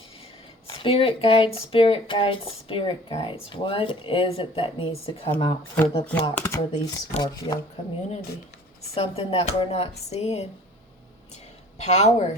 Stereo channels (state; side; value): normal; both; correlation 0.49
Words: Spirit guides, spirit guides, spirit guides. What is it that needs to come out for the block for the Scorpio community? Something that we're not seeing.